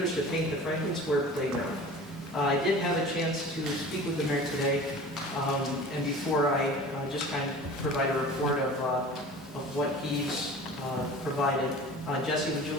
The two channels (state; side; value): normal; both; correlation 0.40